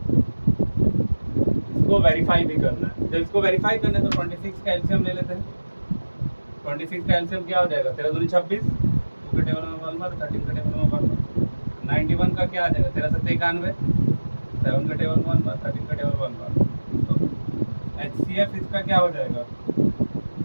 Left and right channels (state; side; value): inverted; both; correlation -1.00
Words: इसको वेरीफाई भी करना है। जब इसको वेरीफाई करना है तो 26 का एलसीएम ले लेते हैं। 26 का एलसीएम क्या हो जाएगा, 13 दूनी 26, 2 के टेबल में 1 बार, 13 के टेबल में 1 बार। 91 का क्या आ जाएगा, 13 7 91, 7 के टेबल में 1 बार, 13 के टेबल में 1 बार। तो एचसीएफ इसका क्या हो जाएगा,